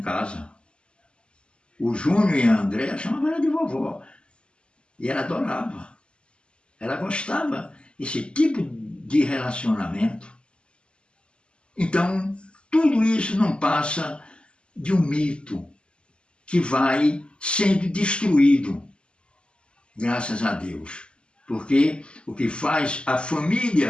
casa. O Júnior e a Andréa chamavam ela de vovó. E ela adorava. Ela gostava desse tipo de relacionamento. Então, tudo isso não passa de um mito que vai sendo destruído, graças a Deus. Porque o que faz a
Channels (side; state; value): right; late; 0.052 ms